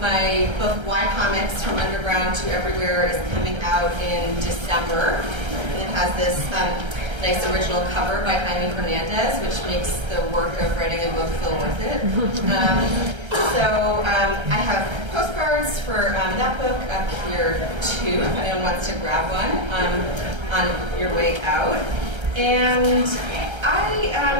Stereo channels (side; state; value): left; late; 1.3 ms